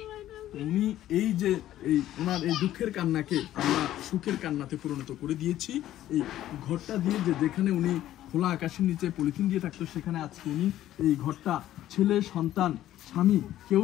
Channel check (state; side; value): quieter; right; 13.1 dB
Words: উনি এই যে এই ওনার এই দুঃখের কান্নাকে আমরা সুখের কান্নাতে পরিণত করে দিয়েছি। এই ঘরটা দিয়ে যেখানে উনি খোলা আকাশের নিচে পলিথিন দিয়ে থাকতো, সেখানে আজকে উনি এই ঘরটা, ছেলে সন্তান স্বামী কেউ